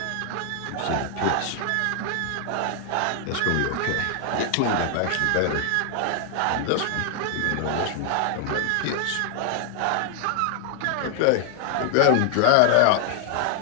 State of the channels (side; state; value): both; different; correlation 0.00